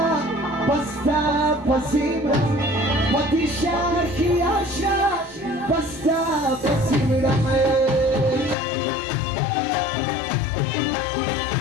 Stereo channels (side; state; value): right; drops out; at 8.6 s